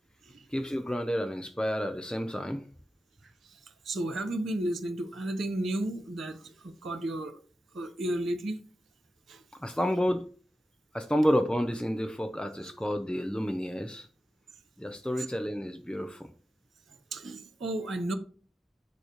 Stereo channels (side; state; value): both; normal; correlation 0.92